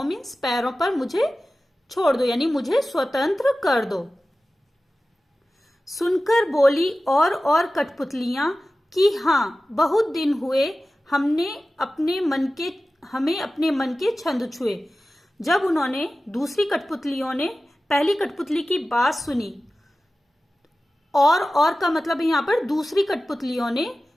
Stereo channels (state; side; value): normal; both; correlation 0.95